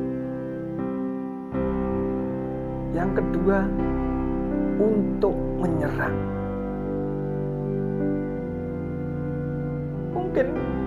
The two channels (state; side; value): identical; both; correlation 1.00